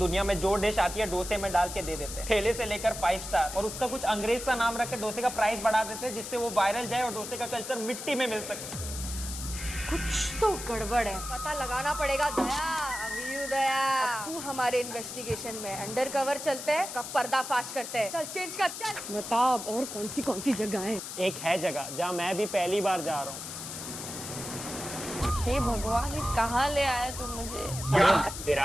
में जो डिश आती है डोसे में डाल के दे देते हैं, ठेले से लेकर 5 स्टार, और उसका कुछ अंग्रेज सा नाम रख के डोसे का प्राइस बढ़ा देते हैं, जिससे वो वायरल जाए और डोसे का कल्चर मिट्टी में मिल सके। कुछ तो गड़बड़ है, पता लगाना पड़ेगा। दया, अभी दया, तू हमारे इन्वेस्टिगेशन में अंडर कवर चलते हैं, कब पर्दाफाश करते हैं। चल चेंज कर, चल बता अब और कौन सी जगह है? एक है जगह जहाँ मैं भी पहली बार जा रहा हूँ। हे भगवान, ये कहाँ ले आया तू मुझे?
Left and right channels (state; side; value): noise; left; hiss, 8 dB below the sound